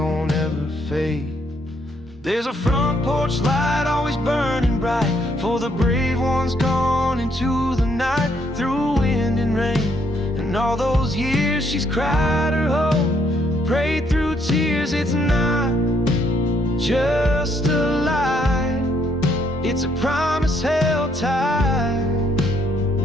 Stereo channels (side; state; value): both; normal; correlation 0.71